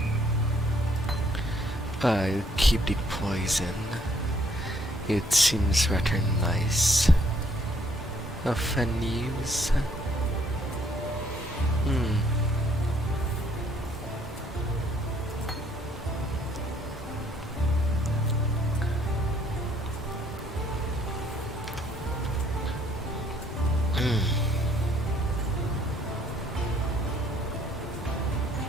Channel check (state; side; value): normal; both; correlation 0.66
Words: I'll keep the poison. It seems rather nice. Of an use. Hmm.